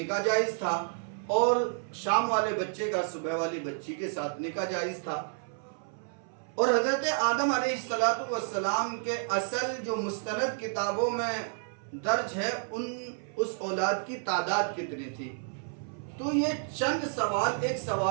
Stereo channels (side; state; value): left; silent; 57 dB below the other